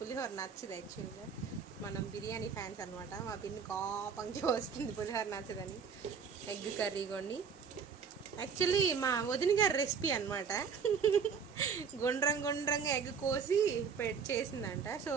నచ్చదు. యాక్చువల్గా మనం బిర్యానీ ఫ్యాన్స్ అనమాట. మా పిన్ని కోపంగా వస్తుంది పులిహోర నచ్చదని. ఎగ్ కర్రీ కొన్ని యాక్చువల్లీ మా వదిన గారి రెసిపీ అనమాట. గుండ్రంగా ఎగ్ కోసి చేసిందంట. సో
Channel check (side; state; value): left; quieter; 6.3 dB